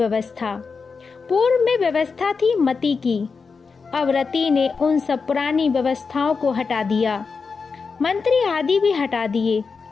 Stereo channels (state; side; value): quieter; right; 5.0 dB